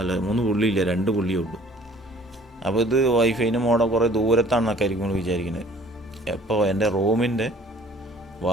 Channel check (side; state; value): both; normal; correlation 0.53